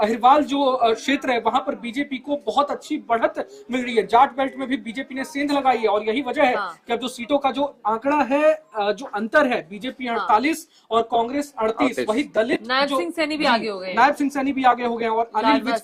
जो क्षेत्र है वहां पर बीजेपी को बहुत अच्छी बढ़त मिल रही है। जाट बेल्ट में भी बीजेपी ने सेंध लगाई है, और यही वजह है कि अब जो सीटों का जो आंकड़ा है, जो अंतर है, बीजेपी 48 और कांग्रेस 38, वही दलित नायब सिंह सैनी भी आगे हो गए, नायब सिंह सैनी भी आगे हो गए। और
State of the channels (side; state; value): both; identical; correlation 1.00